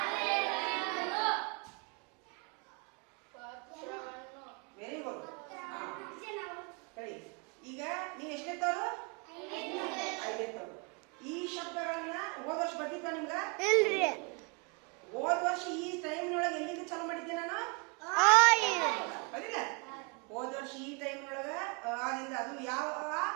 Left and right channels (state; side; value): quieter; left; 32.2 dB